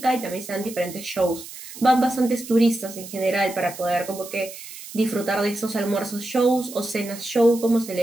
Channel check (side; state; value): right; noise; hiss, 14 dB below the sound